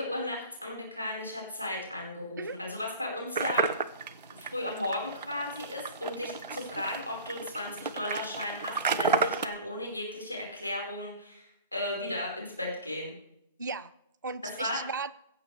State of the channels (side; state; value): both; inverted; correlation -0.40